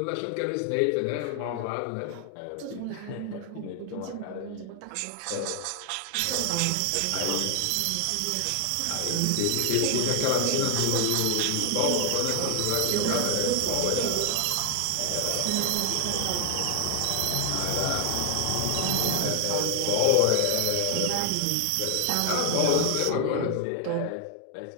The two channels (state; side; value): different; both; correlation 0.00